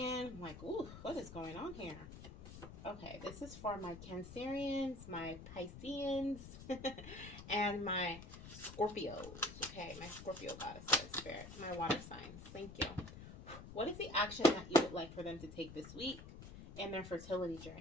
I'm like, ooh, what is going on here? Okay, this is for my Cancerians, my Pisceans, and my Scorpios. Okay, my Scorpio goddesses, spirit, my water signs. Thank you. What is the action that you would like for them to take this week in their fertility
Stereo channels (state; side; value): noise; left; rumble, 13 dB below the sound